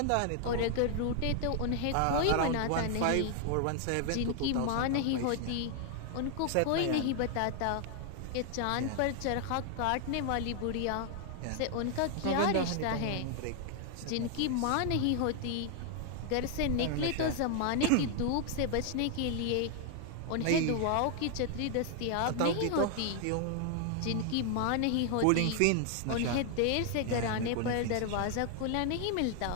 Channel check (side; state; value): both; different; correlation 0.00